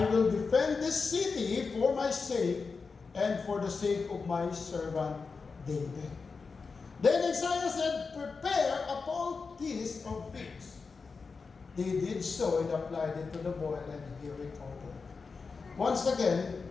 will defend this city for my sake and for the sake of my servant David. Then Isaiah said, prepare a poultice of figs. They did so and applied it to the boil and he recovered. Once again,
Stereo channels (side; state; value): right; quieter; 4.7 dB